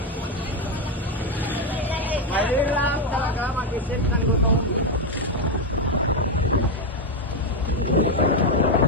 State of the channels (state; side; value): normal; both; correlation 0.06